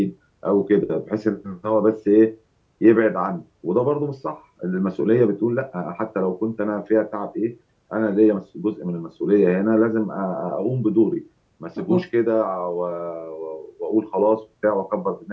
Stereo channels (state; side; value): identical; both; correlation 1.00